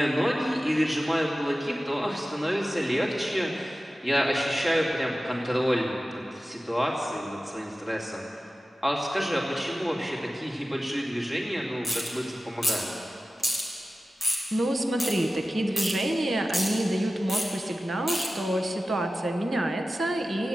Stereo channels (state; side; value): normal; both; correlation 0.95